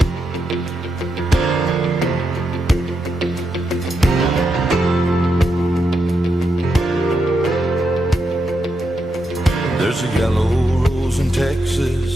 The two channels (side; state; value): both; normal; correlation 0.84